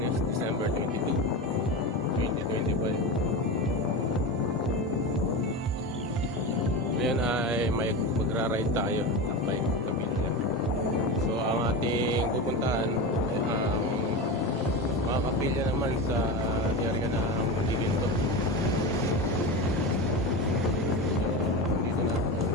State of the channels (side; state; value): both; normal; correlation 0.23